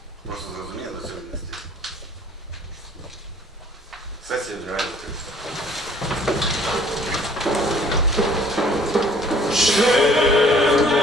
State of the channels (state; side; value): normal; both; correlation 0.56